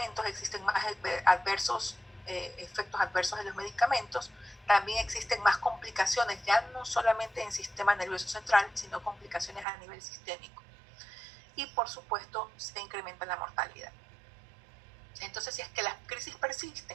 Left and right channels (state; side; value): drops out; left; at 9.7 s